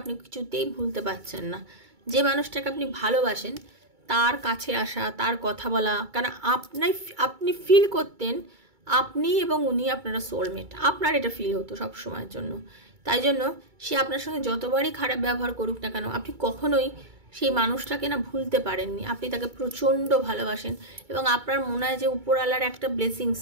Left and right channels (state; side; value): late; left; 2.3 ms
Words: আপনি কিছুতেই ভুলতে পারছেন না। যে মানুষটাকে আপনি ভালোবাসেন তার কাছে আসা, তার কথা বলা, কারণ আপনি ফিল করতেন আপনি এবং উনি আপনারা সোলমেট, আপনার এটা ফিল হতো সব সময়ের জন্য। তাই জন্য সে আপনার সঙ্গে যতবারই খারাপ ব্যবহার করুক না কেন আপনি কখনোই সেই মানুষটাকে না ভুলতে পারেননি। আপনি তাকে প্রচণ্ড ভালোবাসেন, এবং আপনার মনে হয় যে উপরওয়ালার একটা ব্লেসিংস